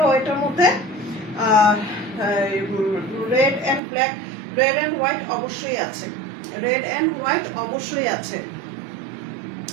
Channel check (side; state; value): left; drops out; at 3.8 s